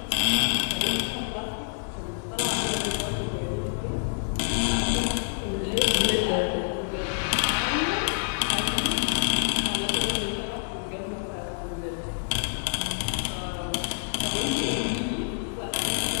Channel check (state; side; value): silent; right; digital silence